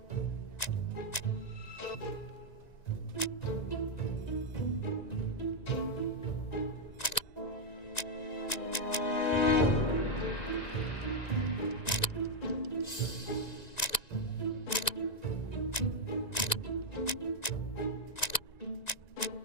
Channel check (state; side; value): late; right; 1.9 ms